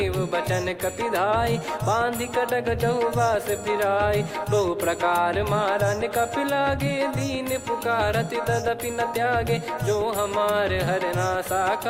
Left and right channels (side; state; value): both; identical; correlation 1.00